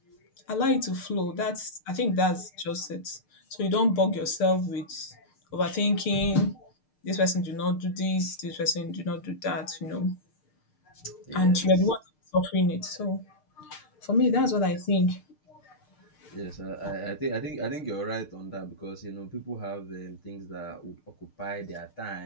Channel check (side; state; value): right; late; 6.7 ms